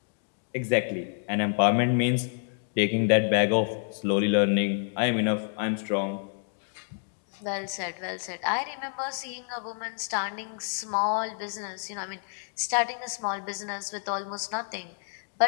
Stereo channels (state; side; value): silent; right; digital silence